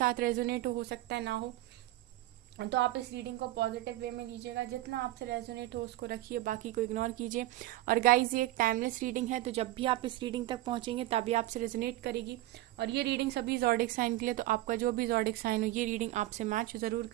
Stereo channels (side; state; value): left; quieter; 16.4 dB